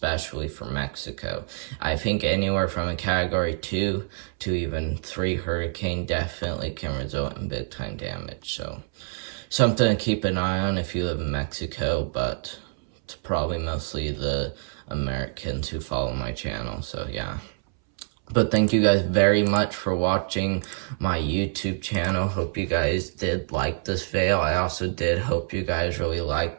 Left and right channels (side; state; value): left; silent; 61 dB below the other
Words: for Mexico. I think anywhere from a Category 2 to even 3 hurricane definitely can result in big time damage. So something to keep an eye on if you live in Mexico, but it's probably mostly the Americans who follow my channel. So yeah. But thank you guys very much for watching my YouTube channel. Hope you guys did like this video. I also did hope you guys really